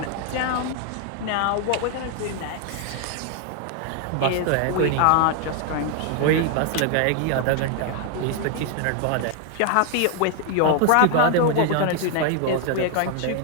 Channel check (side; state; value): both; different; correlation 0.00